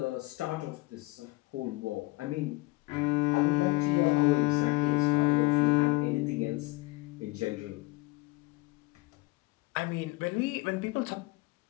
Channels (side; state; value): right; quieter; 22.7 dB